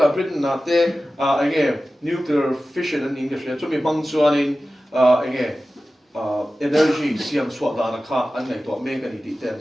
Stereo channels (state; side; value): normal; both; correlation 0.95